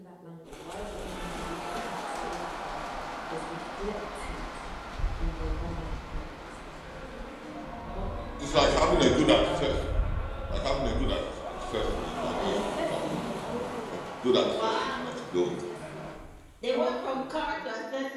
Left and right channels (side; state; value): both; identical; correlation 1.00